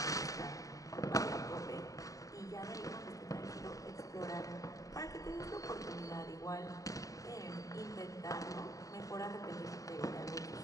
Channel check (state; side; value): late; right; 0.16 ms